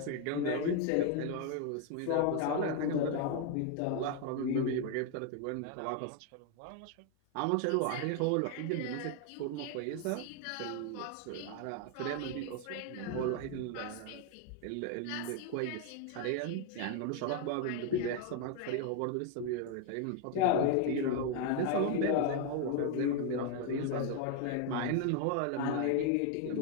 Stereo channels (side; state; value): both; different; correlation 0.01